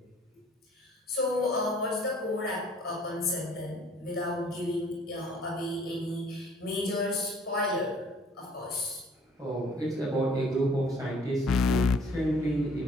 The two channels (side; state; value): both; normal; correlation 0.56